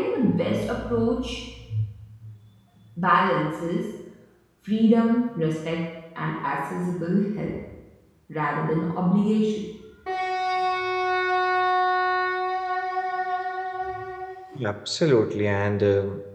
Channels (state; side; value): identical; both; correlation 1.00